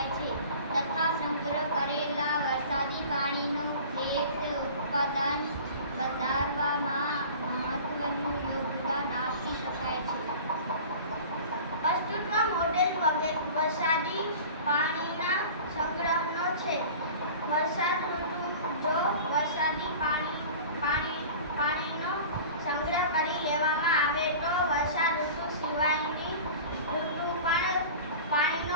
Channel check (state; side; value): inverted; both; correlation -0.39